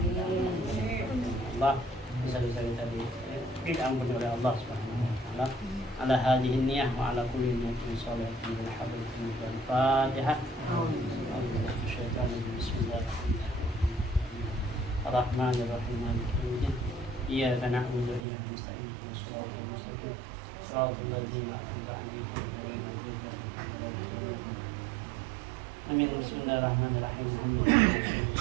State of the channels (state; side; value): drops out; left; at 18.2 s